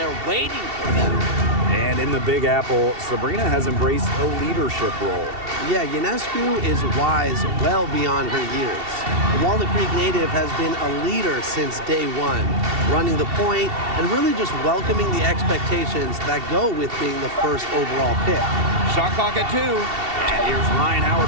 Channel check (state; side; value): late; left; 2.7 ms